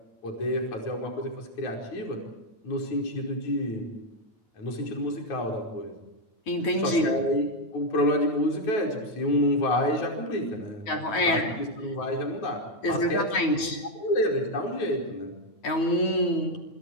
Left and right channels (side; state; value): right; late; 9.2 ms